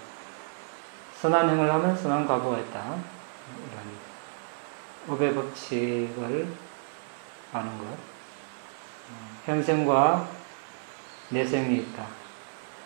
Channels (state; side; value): silent; left; 58 dB below the other